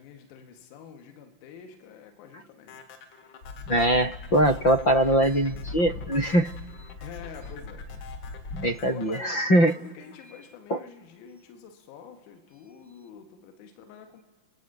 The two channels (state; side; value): late; right; 5.8 ms